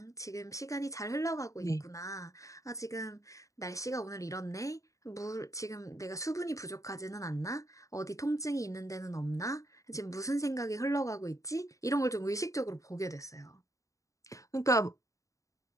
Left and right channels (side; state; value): right; late; 0.16 ms